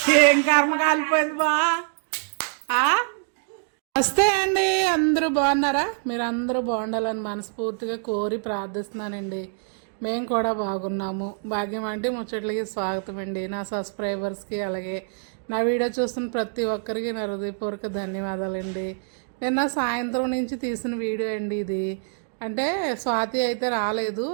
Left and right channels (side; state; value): left; silent; digital silence